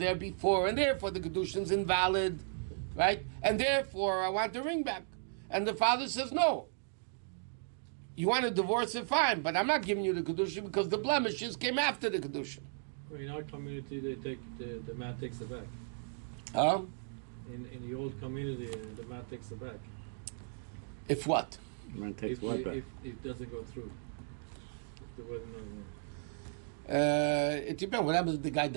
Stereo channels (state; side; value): silent; left; digital silence